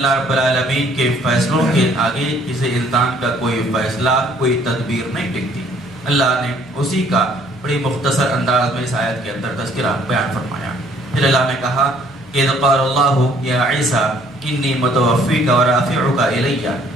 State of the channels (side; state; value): left; noise; hum, 28 dB below the sound